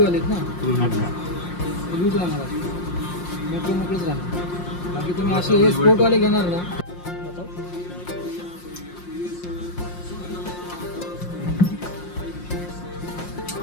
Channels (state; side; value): late; right; 5.6 ms